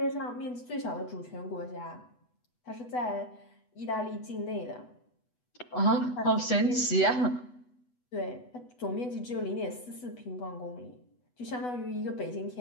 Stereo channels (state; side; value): late; right; 8.1 ms